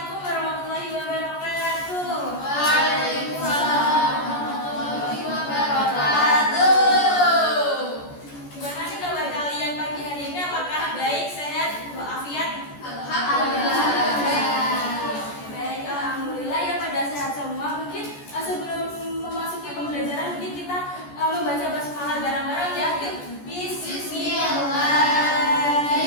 warahmatullahi wabarakatuh. Waalaikumsalam warahmatullahi wabarakatuh. Gimana nih kabar kalian pagi hari ini? Apakah baik, sehat, walafiat? Alhamdulillah. Baik, alhamdulillah ya pada sehat semua. Mungkin sebelum memasuki pembelajaran mungkin kita membaca basmalah bareng-bareng ya. Yuk.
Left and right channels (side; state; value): right; late; 14 ms